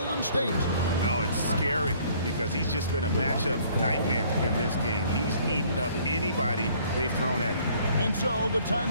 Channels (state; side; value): inverted; both; correlation -0.59